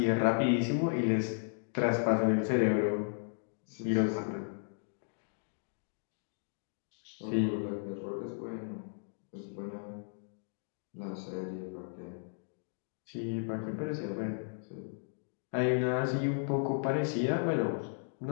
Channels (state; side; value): silent; right; digital silence